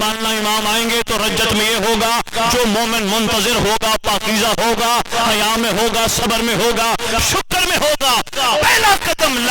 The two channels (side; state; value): both; identical; correlation 1.00